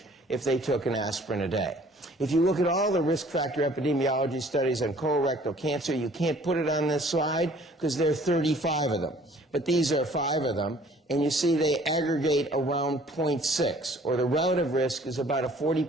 if they took an aspirin a day. If you look at all the risk factor epidemiology studies on colorectal cancer, you can't put it on this slide because there are 35 of them. But these are 5 of them, and you see they aggregate around 0.6, or the relative risk is about a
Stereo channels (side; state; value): both; normal; correlation 0.55